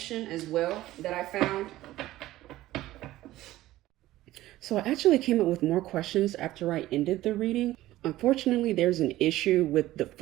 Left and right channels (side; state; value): left; quieter; 15.7 dB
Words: as well that I found. So I actually came up with more questions after I ended the reading. Unfortunately, there's an issue with the